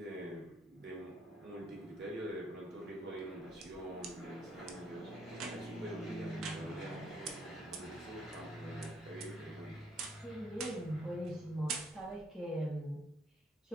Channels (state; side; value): normal; both; correlation 0.68